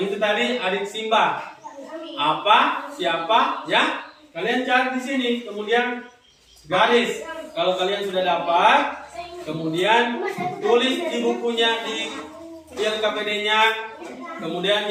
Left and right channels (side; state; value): both; identical; correlation 1.00